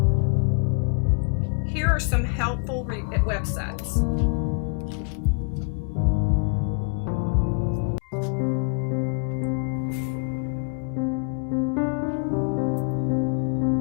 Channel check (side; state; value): right; quieter; 38.7 dB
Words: Here are some helpful websites.